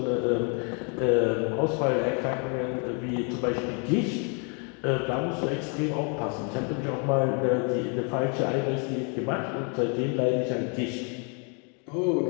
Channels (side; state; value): right; quieter; 37.4 dB